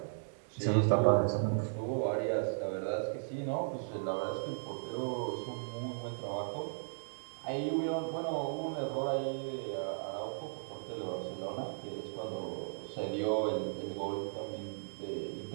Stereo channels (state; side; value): silent; left; digital silence